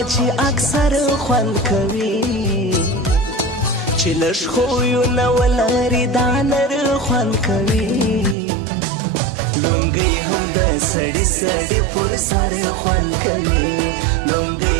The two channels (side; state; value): left; drops out; at 8.3 s